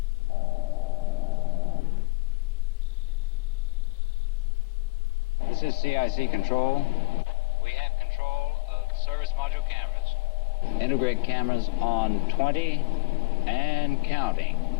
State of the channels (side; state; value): right; quieter; 24.7 dB